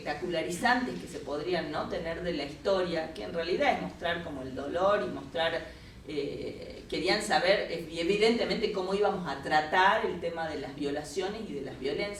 que se podrían, ¿no?, tener de la historia, que en realidad es mostrar como el dolor y mostrar, querían saber evidentemente cómo íbamos a tratar el tema de las violaciones y de las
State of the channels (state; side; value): identical; both; correlation 1.00